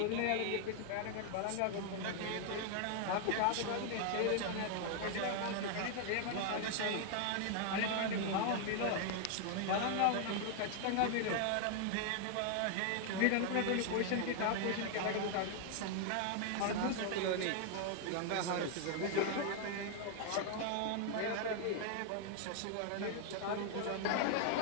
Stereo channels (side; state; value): both; different; correlation 0.00